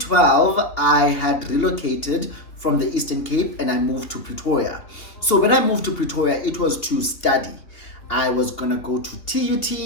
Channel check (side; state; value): right; late; 3.2 ms